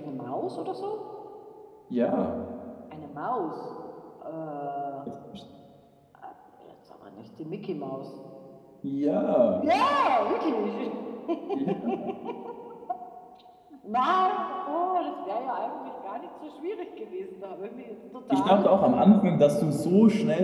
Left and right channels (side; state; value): both; identical; correlation 1.00